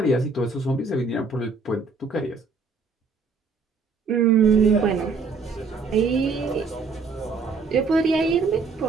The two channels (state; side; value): quieter; left; 4.4 dB